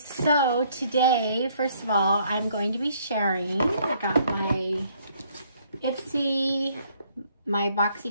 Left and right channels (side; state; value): both; inverted; correlation -0.65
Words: today, first of all, I'm going to be sharing. I got my Ipsy, my